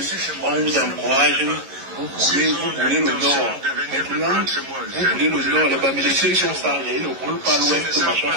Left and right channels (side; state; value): left; late; 11 ms